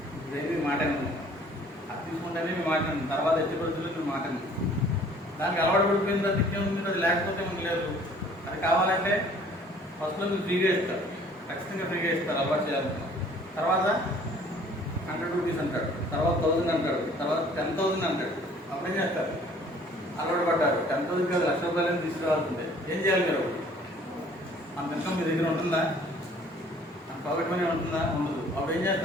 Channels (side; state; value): both; normal; correlation 0.54